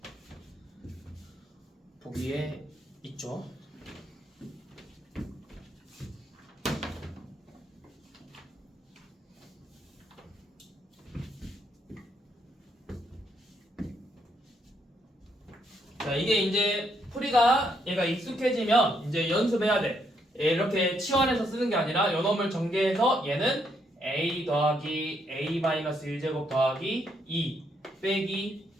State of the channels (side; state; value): both; normal; correlation 0.75